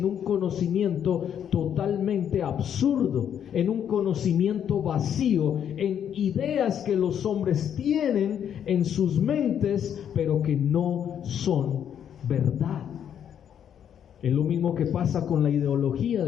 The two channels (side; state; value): right; quieter; 9.0 dB